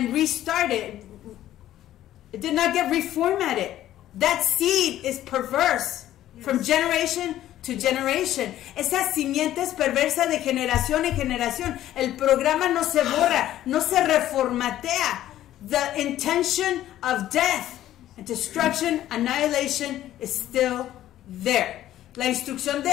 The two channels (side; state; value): right; quieter; 13.0 dB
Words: restarted. It did not get reformatted. That seed is perverse from generation to generation. Esa simiente es perversa de generación en generación. El programa no se borra, no se reformatea. The intention of death and destruction, annihilation is still there. La instrucción de